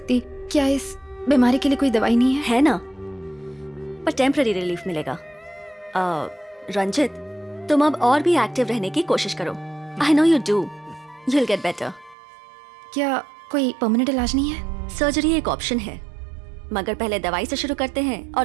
क्या इस बीमारी के लिए कोई दवाई नहीं है? है ना, पर टेम्पररी रिलीफ मिलेगा। रंजित, तुम अब और भी एक्टिव रहने की कोशिश करो। I know you do, you will get better. क्या कोई परमानेंट इलाज नहीं है? सर्जरी एक ऑप्शन है, मगर पहले दवाई से शुरू करते हैं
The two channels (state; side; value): drops out; left; at 12.2 s